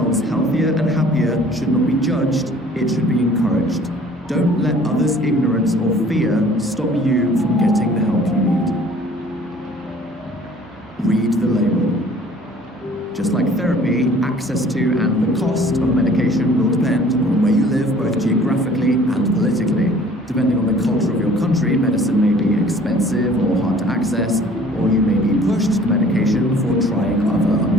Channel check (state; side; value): normal; both; correlation 0.52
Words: healthier and happier should not be judged, it should be encouraged. Don't let others' ignorance or fear stop you from getting the help you need. Read the label. Just like therapy, access to and the cost of medication will depend on where you live, both geographically and politically. Depending on the culture of your country, medicine may be expensive or hard to access, or you may be pushed to medication before trying other